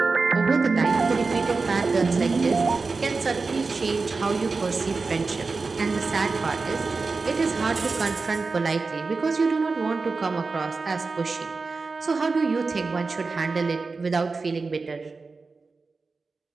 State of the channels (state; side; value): quieter; left; 4.2 dB